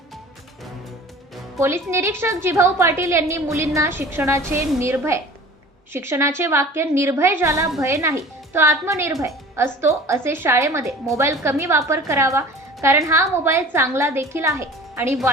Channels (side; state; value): both; normal; correlation 0.42